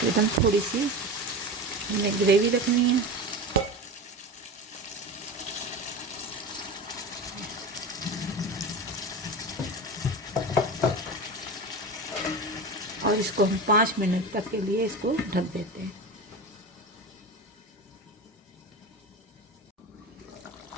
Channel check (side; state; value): both; normal; correlation 0.27